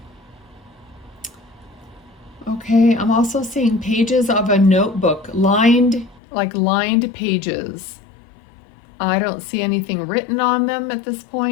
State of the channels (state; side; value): drops out; right; at 6.2 s